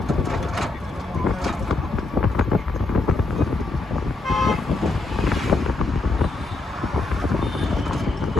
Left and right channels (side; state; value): right; quieter; 3.2 dB